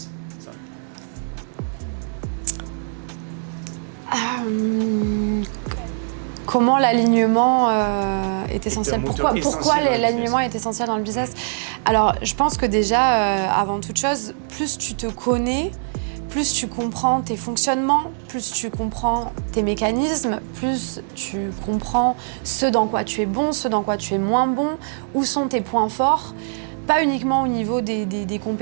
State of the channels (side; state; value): left; silent; digital silence